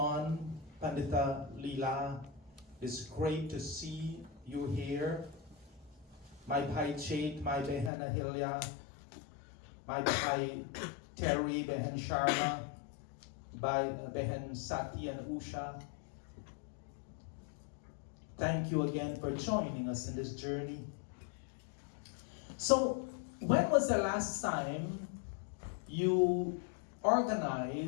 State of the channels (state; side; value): drops out; right; at 7.9 s